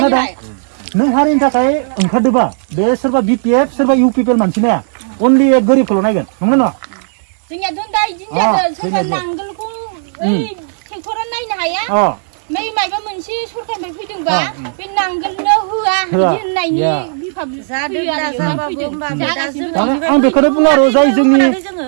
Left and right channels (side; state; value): left; silent; digital silence